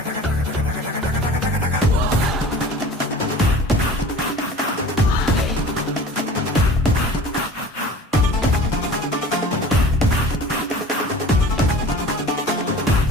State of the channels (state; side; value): normal; both; correlation 0.42